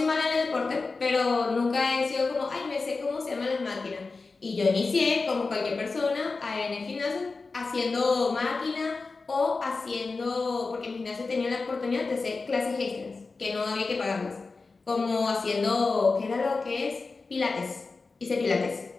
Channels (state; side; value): quieter; right; 4.0 dB